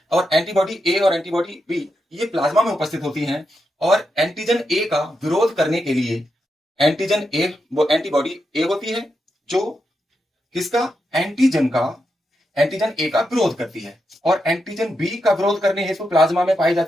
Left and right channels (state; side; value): normal; both; correlation 0.85